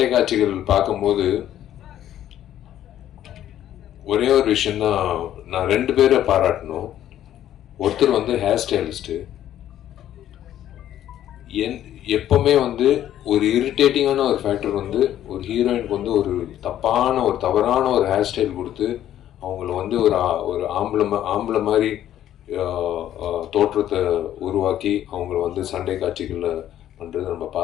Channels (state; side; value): quieter; right; 11.7 dB